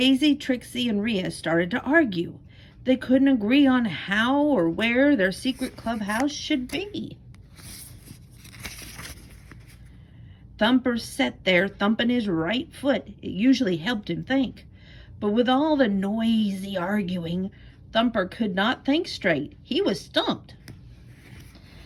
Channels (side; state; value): both; identical; correlation 1.00